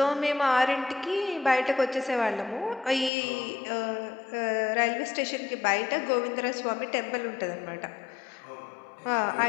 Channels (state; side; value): drops out; right; at 3.1 s